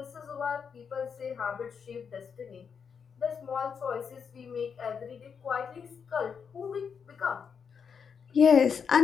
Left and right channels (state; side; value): quieter; right; 6.5 dB